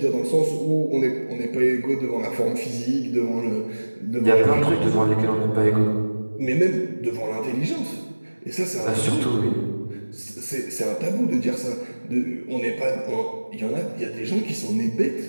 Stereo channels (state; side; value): inverted; both; correlation -1.00